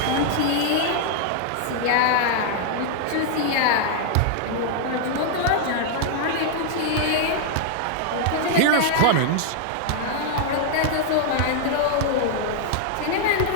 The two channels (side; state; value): both; different; correlation -0.01